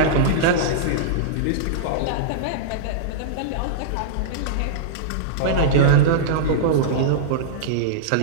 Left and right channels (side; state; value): both; different; correlation -0.03